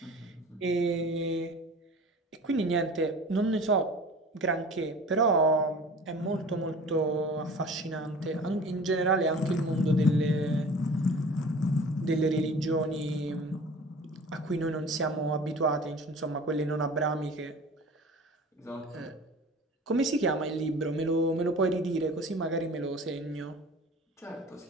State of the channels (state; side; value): normal; both; correlation 0.42